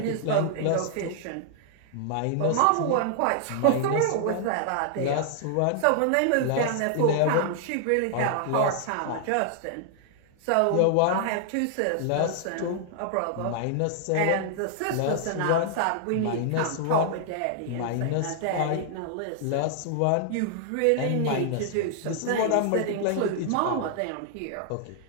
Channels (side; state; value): both; different; correlation -0.01